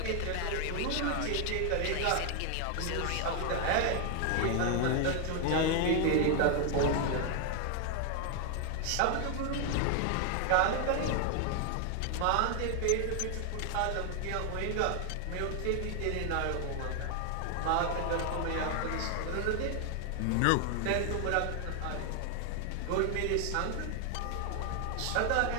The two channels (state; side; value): different; both; correlation 0.00